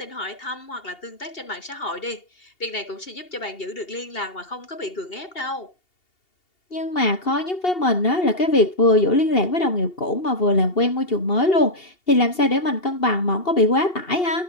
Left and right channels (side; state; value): right; late; 2.8 ms